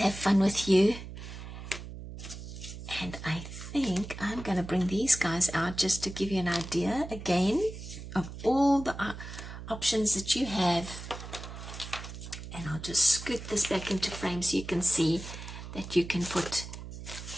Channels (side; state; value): right; noise; hum, 11 dB below the sound